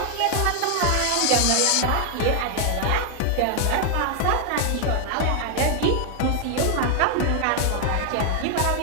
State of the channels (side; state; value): both; different; correlation 0.00